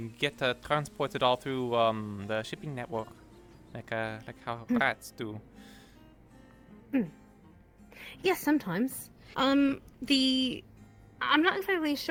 get transported all through the shipping network, like how rats do. Yes, sometimes. I'm not exactly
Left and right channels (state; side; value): identical; both; correlation 1.00